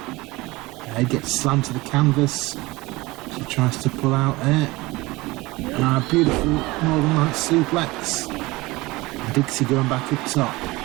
Head gets slammed to the canvas. She tries to pull out there. And a beautiful Northern Lights suplex. And Dixie going back up top.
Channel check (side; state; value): left; quieter; 21.4 dB